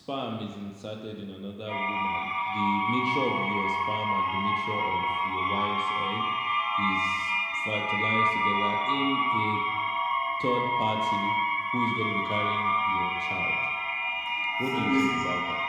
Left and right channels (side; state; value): both; identical; correlation 1.00